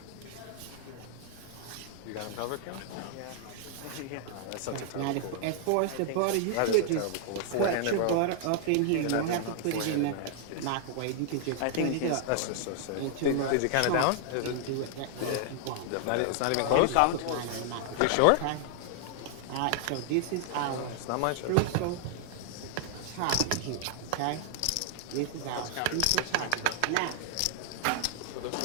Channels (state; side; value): different; both; correlation 0.00